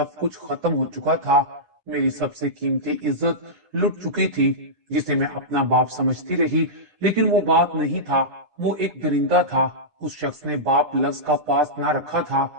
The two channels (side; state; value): left; late; 10 ms